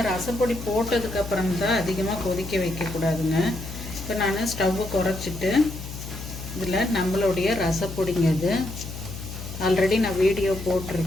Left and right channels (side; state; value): left; noise; hum, 10 dB below the sound